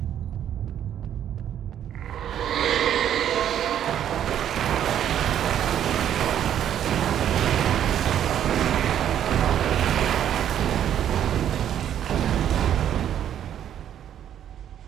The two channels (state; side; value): quieter; left; 10.2 dB